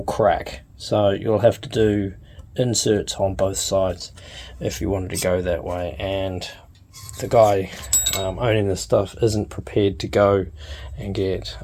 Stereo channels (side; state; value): both; identical; correlation 1.00